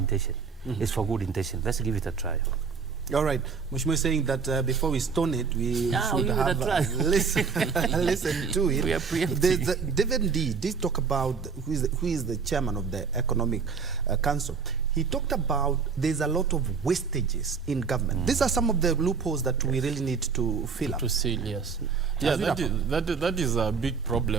it's for good intention. Let's give it a try. All right. Mheshimiwa is saying that before we stone it, we should have listen to it. We are preempting. David D did talk about who is the chairman of the Economic Council. He talked about there's a lot of wastages in government. These are some of the loopholes that we really need to fill up. To seal, yes. Yeah, that is a big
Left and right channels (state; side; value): quieter; left; 5.6 dB